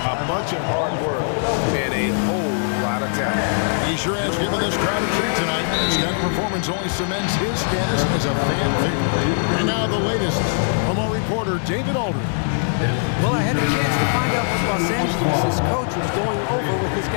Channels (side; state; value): right; silent; 56 dB below the other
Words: a bunch of hard work, and a whole lot of talent. He sure has given this crowd a treat tonight. This kind of performance only cements his status as a fan favorite. And now the latest from our reporter, David Aldridge. Well, I had a chance to find out what Los Angeles' coach was going over with his